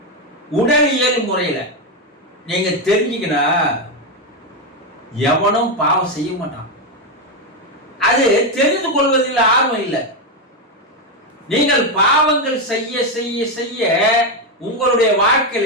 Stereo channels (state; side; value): normal; both; correlation 0.07